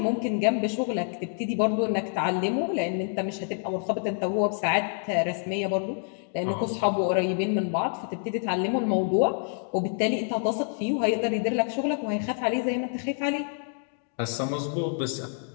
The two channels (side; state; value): right; silent; 60 dB below the other